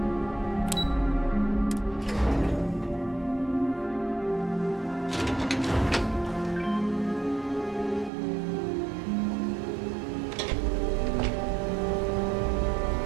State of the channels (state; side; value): drops out; left; at 8.1 s